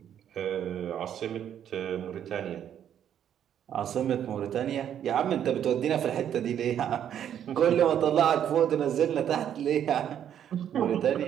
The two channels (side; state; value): left; quieter; 9.7 dB